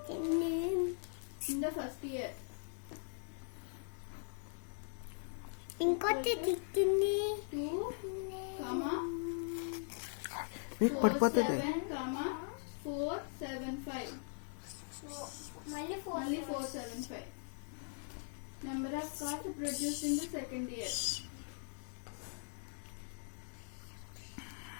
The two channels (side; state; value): right; silent; digital silence